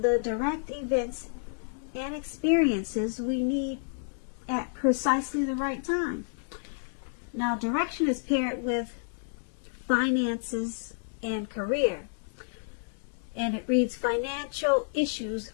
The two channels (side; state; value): right; silent; digital silence